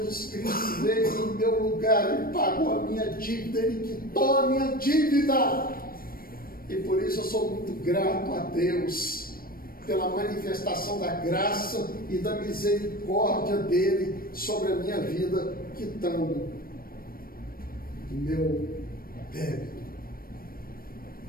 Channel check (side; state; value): right; late; 0.43 ms